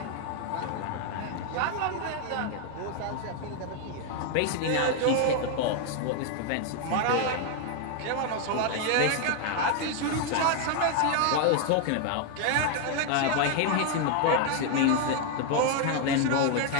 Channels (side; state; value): both; different; correlation 0.01